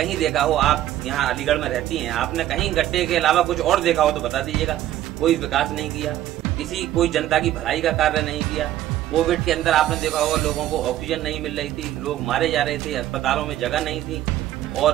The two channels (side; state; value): left; quieter; 13.1 dB